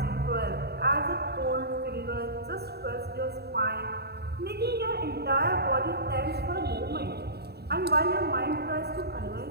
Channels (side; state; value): left; late; 0.47 ms